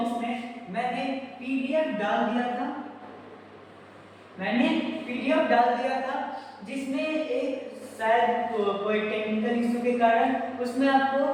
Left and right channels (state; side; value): identical; both; correlation 1.00